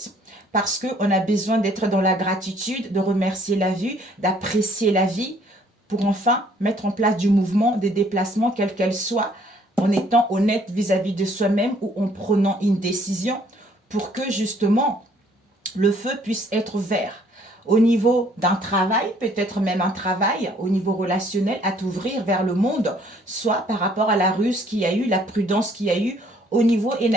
Parce qu'on a besoin d'être dans la gratitude, de remercier la vie, d'apprécier la vie, pour enfin mettre en place du mouvement, des déplacements, quels qu'elles soient, en étant honnête vis-à-vis de soi-même ou en prenant une décision pour que justement le feu puisse être vert. Au niveau d'un travail, peut-être même un travail, au niveau relationnel, à t'ouvrir vers le monde, soit par rapport à la ruse qu'il y a eu, la prudence qu'il y a eu, au niveau,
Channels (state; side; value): normal; both; correlation 0.62